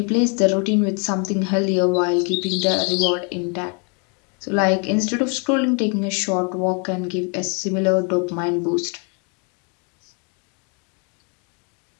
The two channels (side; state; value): right; quieter; 36.0 dB